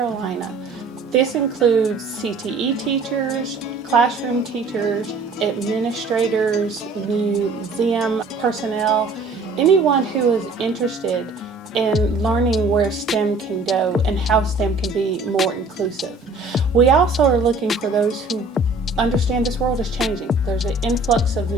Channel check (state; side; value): quieter; left; 3.4 dB